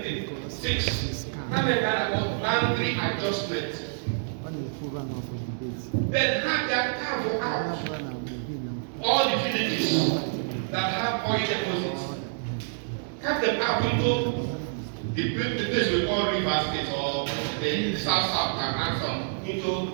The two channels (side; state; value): left; silent; digital silence